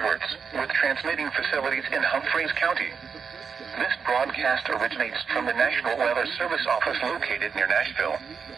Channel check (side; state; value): left; quieter; 6.1 dB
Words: with transmitting facilities in Humphreys County. This broadcast originates from the National Weather Service office located near Nashville.